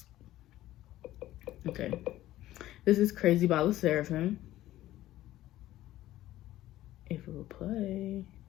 Okay. This is Crazy by La Seraphim. If it will play.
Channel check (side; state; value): right; quieter; 14.8 dB